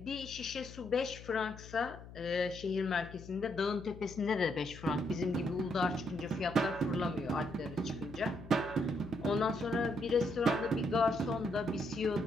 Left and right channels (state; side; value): noise; left; hum, 15 dB below the sound